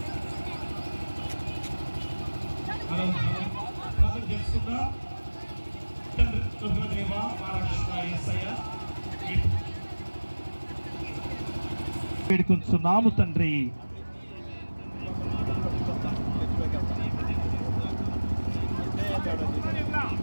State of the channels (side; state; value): both; inverted; correlation -1.00